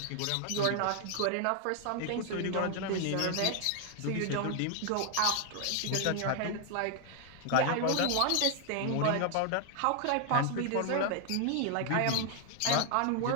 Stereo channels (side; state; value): both; different; correlation 0.00